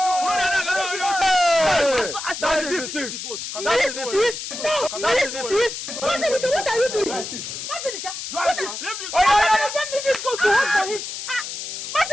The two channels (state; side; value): noise; left; hiss, 7 dB below the sound